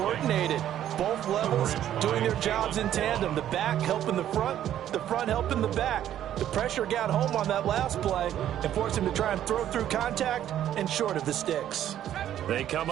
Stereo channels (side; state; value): left; quieter; 11.3 dB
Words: Both levels doing their jobs in tandem. The back helping the front helping the back. The pressure got home on that last play and forced him to try and throw through contact and short of the sticks. They come